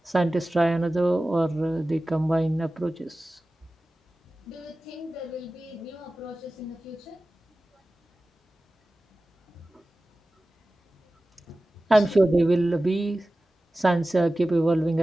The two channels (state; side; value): normal; both; correlation 0.96